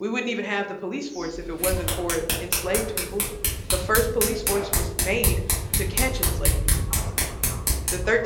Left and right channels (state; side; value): identical; both; correlation 1.00